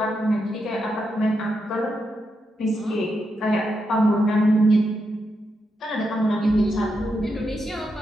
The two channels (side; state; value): both; normal; correlation 0.84